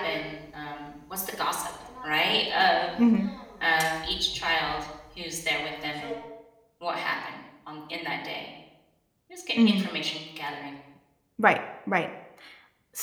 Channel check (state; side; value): identical; both; correlation 1.00